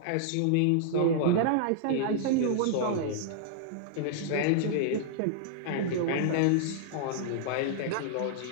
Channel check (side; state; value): both; different; correlation -0.01